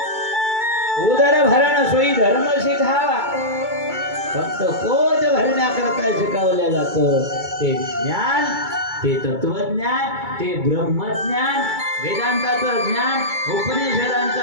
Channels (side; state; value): left; late; 2.2 ms